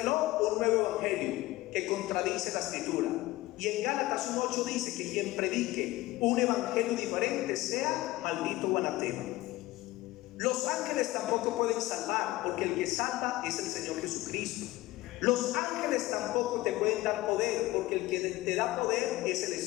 un nuevo evangelio que contradice la escritura. Y en Gálatas 1:8 dice que quien predique un evangelio diferente sea maldito o anatema. Los ángeles tampoco pueden salvar, porque el que salva es el Señor Jesucristo. Los ángeles tampoco te pueden dar poder, porque el que te da poder es el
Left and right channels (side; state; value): right; quieter; 18.3 dB